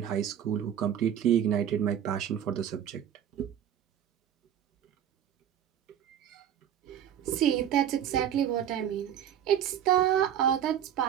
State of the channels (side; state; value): left; quieter; 9.8 dB